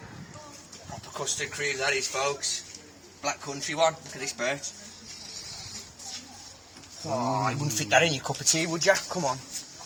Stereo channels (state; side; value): identical; both; correlation 1.00